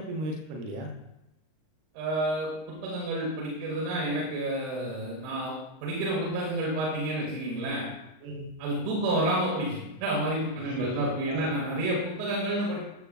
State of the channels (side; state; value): left; late; 38 ms